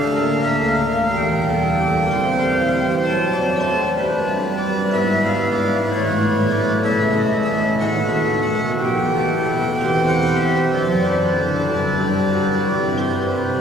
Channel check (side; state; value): both; normal; correlation 0.67